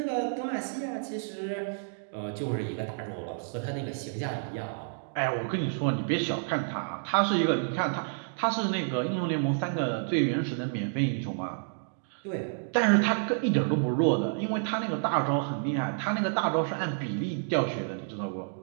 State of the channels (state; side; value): silent; left; digital silence